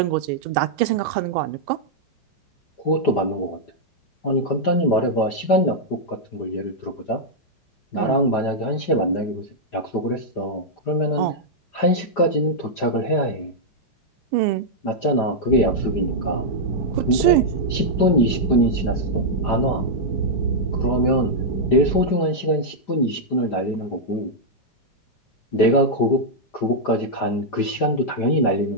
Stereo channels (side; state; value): right; late; 5.0 ms